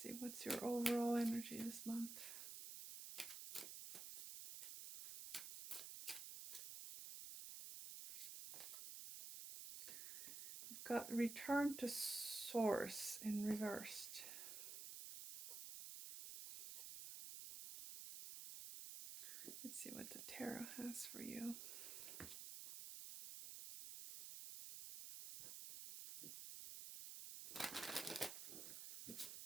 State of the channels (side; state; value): right; noise; hiss, 7 dB below the sound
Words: see, what's your overall energy this month? We've got Return to Source in reversed. Let's see what the tarot has for you.